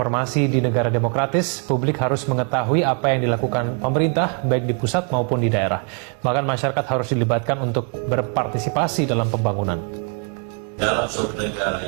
di negara demokratis, publik harus mengetahui apa yang dilakukan pemerintah, baik di pusat maupun di daerah. Bahkan masyarakat harus dilibatkan untuk berpartisipasi dalam pembangunan. Dalam suatu negara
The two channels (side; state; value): left; quieter; 39.4 dB